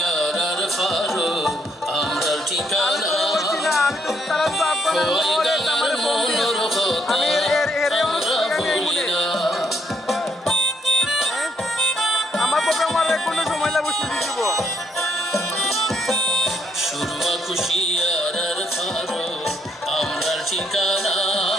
আর ফারো আমরা ঠিকানা আমি তো তারা তো আপনার আমি আমার প্রোগ্রাম আর কোনো সময় লাগবে শুধু দিব সুরমা খুশি আর ফারো আমরা ঠিকানা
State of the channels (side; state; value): both; normal; correlation 0.73